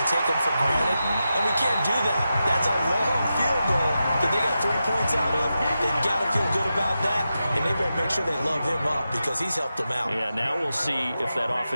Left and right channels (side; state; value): both; inverted; correlation -0.90